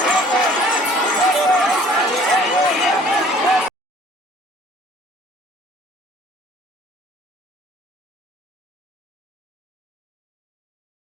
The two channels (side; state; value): both; normal; correlation 0.54